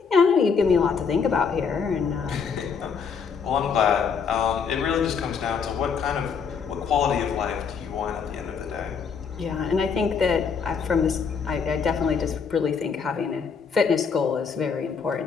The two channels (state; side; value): quieter; right; 6.1 dB